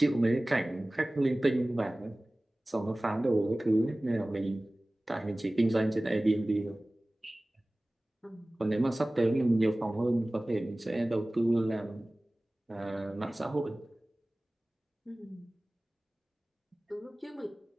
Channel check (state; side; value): normal; both; correlation 0.98